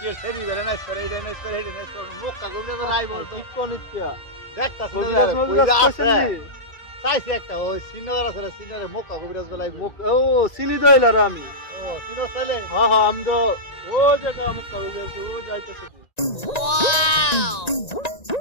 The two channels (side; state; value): right; late; 1.9 ms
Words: সেরি বেড়ে নাইস করে, এইটা নাইস করে, এইটা নাইস করে, মুখ কাগজে তো নাই বলতো। দেখতাছি না রে, কইরা আছে চাইছি একটা ওই সিনিয়র আছে রে, সিনিয়রের মুখ কাগজ বেলাই। ও চিনি তো এলার আমি। ও সিনিয়র ছেলে? হ্যাঁ হ্যাঁ, আমি তো ও জায়গা মুখ কাগজ ও যাইতেছে।